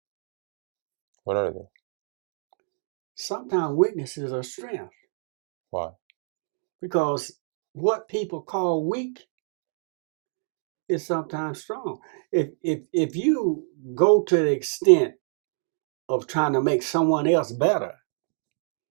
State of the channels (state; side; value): silent; left; digital silence